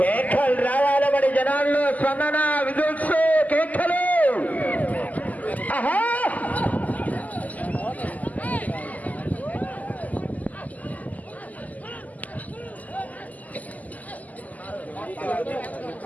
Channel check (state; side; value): late; right; 0.078 ms